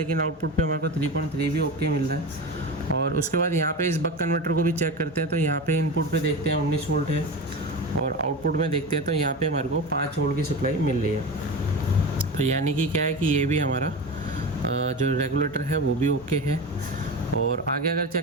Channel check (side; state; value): both; normal; correlation 0.26